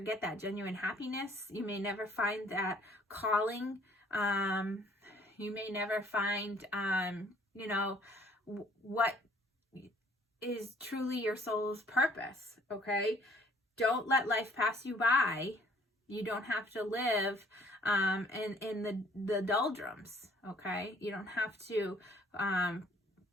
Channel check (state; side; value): normal; both; correlation 0.59